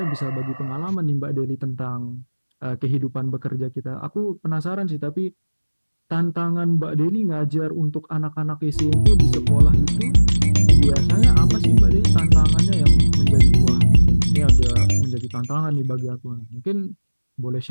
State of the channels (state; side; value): inverted; both; correlation -1.00